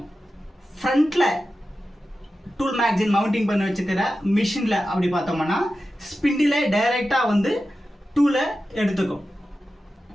ஃப்ரண்ட்டில் டூல் மேக்சின் மவுண்டிங் பண்ணி வச்சுக்கிற மிஷினில் அப்படி பார்த்தோம்னா ஸ்பிண்டில் டைரெக்டாக டூலை எடுத்துக்கும்,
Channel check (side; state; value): both; normal; correlation 0.92